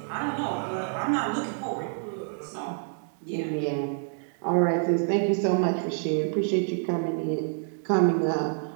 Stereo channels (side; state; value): left; silent; digital silence